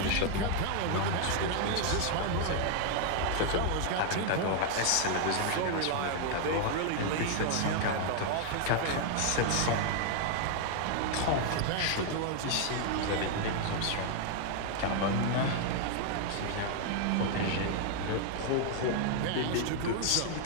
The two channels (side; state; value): both; different; correlation 0.00